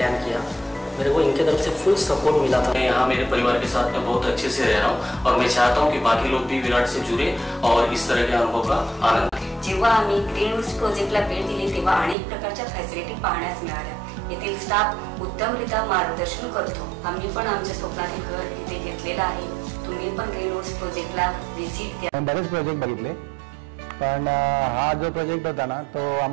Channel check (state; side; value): drops out; left; at 12.2 s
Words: किया, मेरे को इनके तरफ से फुल सपोर्ट मिला था। मैं यहाँ मेरे परिवार के साथ में बहुत अच्छे से रह रहा हूँ और मैं चाहता हूँ कि बाकी लोग भी विराट से जुड़े और इस तरह के अनुभव का आनंद। जेव्हा आम्ही ग्रीन रूट्स प्रोजेक्टला भेट दिली तेव्हा अनेक प्रकारच्या फॅसिलिटी पाहण्यास मिळाल्या। येथील स्टाफ उत्तमरित्या मार्गदर्शन करतो। आम्ही पण आमच्या स्वप्नातील घर इथे घेतलेलं आहे। तुम्ही पण ग्रीन रूट्स प्रोजेक्टला व्हिजिट द्या। बरेच प्रोजेक्ट बघितले पण हा जो प्रोजेक्ट होता ना तो